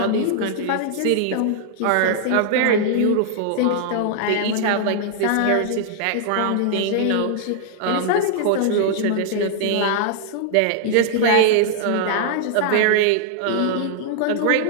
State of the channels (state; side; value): different; both; correlation -0.01